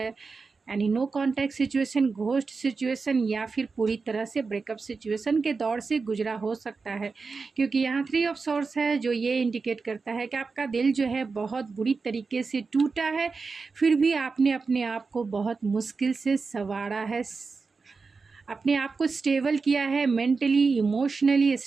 यानी no contact situation, ghost situation, या फिर पूरी तरह से ब्रेकअप सिचुएशन के दौर से गुजरा हो सकता है। क्योंकि यहाँ 3 ऑफ सोर्स है, जो ये इंडिकेट करता है कि आपका दिल जो है बहुत बुरी तरीके से टूटा है, फिर भी आपने अपने आप को बहुत मुश्किल से संवारा है, अपने आप को स्टेबल किया है, मेंटली इमोशनली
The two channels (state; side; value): quieter; left; 4.5 dB